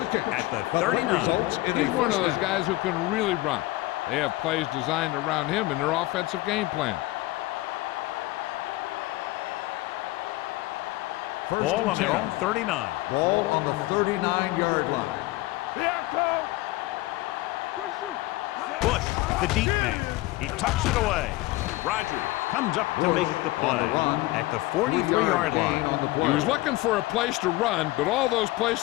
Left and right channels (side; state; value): right; quieter; 19.3 dB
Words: at the 39. He's one of those guys who can really run. They have plays designed around him in their offensive game plan. Ball on their own 39. Ball on the 39-yard line. Bush, the deep man. He tucks it away. Rogers comes up to make the play at the 43-yard line. He was looking for a place to run, but all those